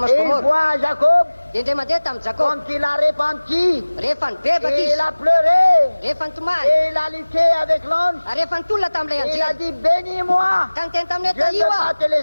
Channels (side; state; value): both; inverted; correlation -1.00